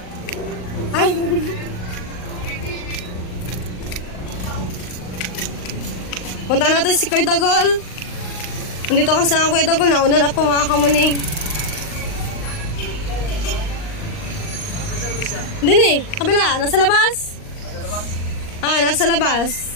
Punta natin si Kuya Dagol. Nandito ka sa Kuya Dagol. Nauna na po mga kamuning. Hindi ni, kabila. Nasa labas? Nasa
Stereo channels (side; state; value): right; late; 38 ms